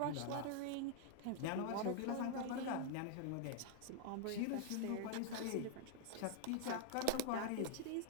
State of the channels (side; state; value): both; different; correlation 0.00